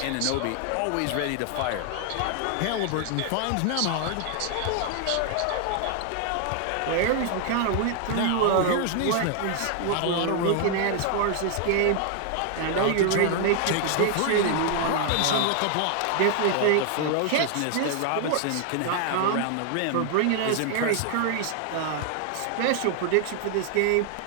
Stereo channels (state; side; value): different; both; correlation 0.00